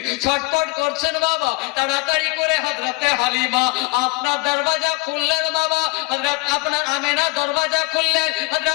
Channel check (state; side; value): quieter; right; 26.5 dB